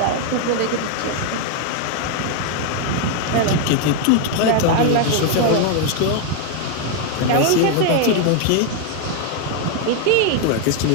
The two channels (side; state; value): both; different; correlation 0.00